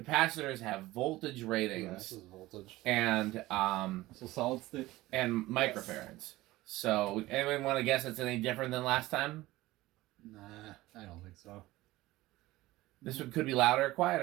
have voltage ratings. Yeah, this is voltage. And so solid state and microfarads. So anyone want to guess it's any different than last time? Nah, I don't think so. This one could be louder or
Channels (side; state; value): left; quieter; 18.0 dB